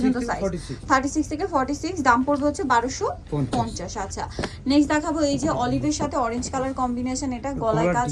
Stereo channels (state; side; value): identical; both; correlation 1.00